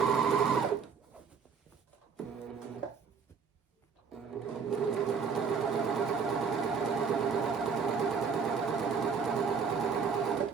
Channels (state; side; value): quieter; left; 5.9 dB